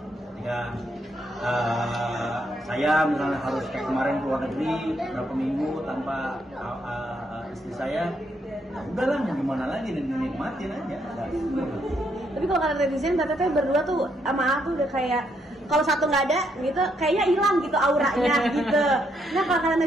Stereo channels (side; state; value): both; normal; correlation 0.75